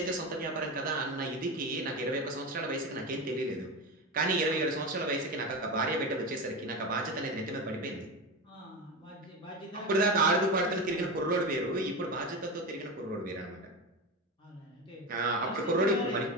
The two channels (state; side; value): normal; both; correlation 0.20